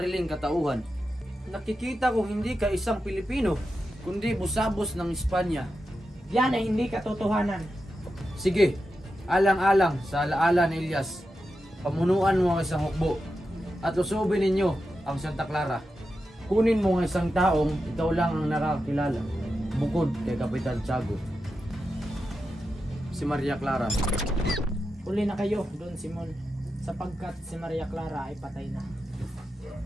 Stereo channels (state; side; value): normal; both; correlation 0.89